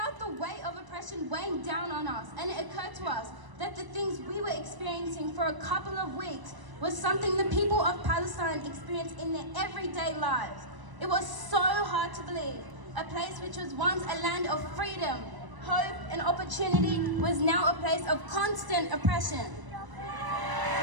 the weight of oppression weighing down on us, and it occurred to us that the things we were experiencing for a couple of weeks was something the people of Palestine experience in their everyday lives. It was so hard to believe. A place which was once a land of freedom, hope, and opportunity was now a place of constant oppression.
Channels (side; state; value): left; late; 1.0 ms